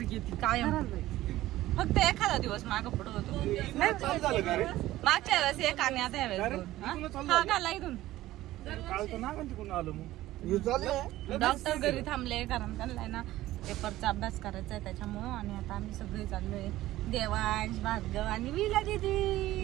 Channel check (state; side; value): quieter; left; 15.7 dB